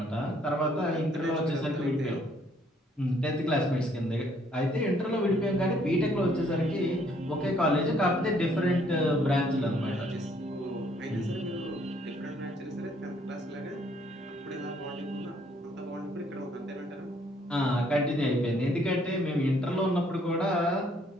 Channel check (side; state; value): both; normal; correlation 0.65